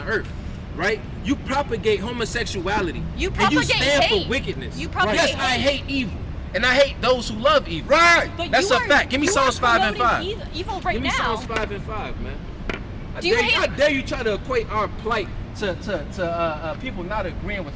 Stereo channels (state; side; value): identical; both; correlation 1.00